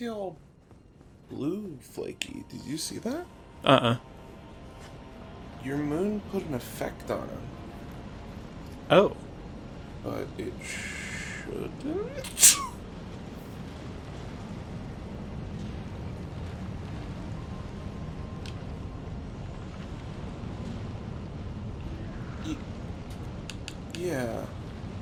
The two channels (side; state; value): both; identical; correlation 1.00